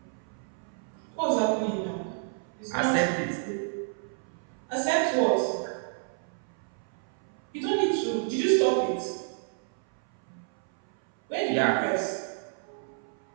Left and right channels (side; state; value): left; silent; 58 dB below the other